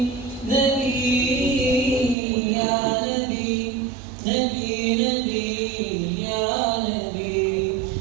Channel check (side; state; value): left; drops out; at 2.1 s